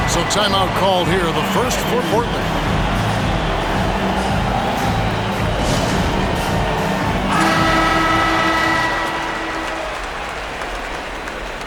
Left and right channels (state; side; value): identical; both; correlation 1.00